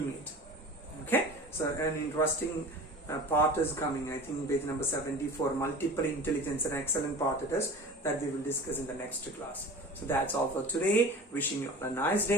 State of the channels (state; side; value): normal; both; correlation 0.38